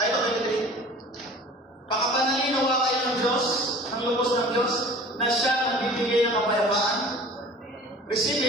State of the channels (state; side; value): normal; both; correlation 0.44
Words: ito, pakapanalinawa kayo ng Diyos, ng lubos ng Diyos, na siya nagbibigay ng kapayapaan. Receive